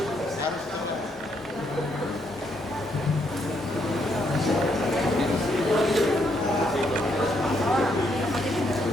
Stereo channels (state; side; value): normal; both; correlation 0.74